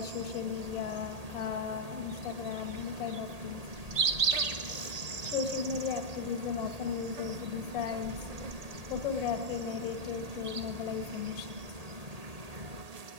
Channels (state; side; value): late; left; 1.8 ms